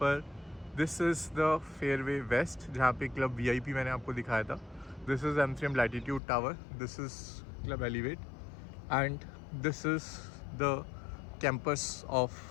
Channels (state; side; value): drops out; right; at 6.2 s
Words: this is the Fairway West, जहाँ पे Club VIP मैंने आपको दिखाया था. This is M3M Latitude Tower, this is Club Elevate, and this is the campus of